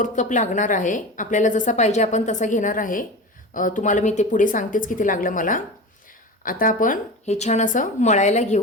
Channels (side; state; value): both; normal; correlation 0.29